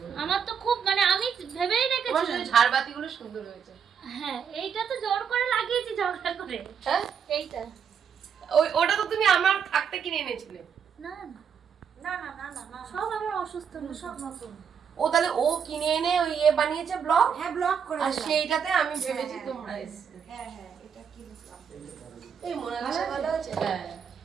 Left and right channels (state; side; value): quieter; left; 7.2 dB